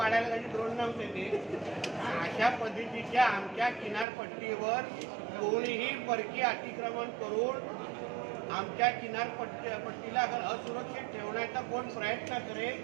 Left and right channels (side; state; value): left; drops out; at 4.0 s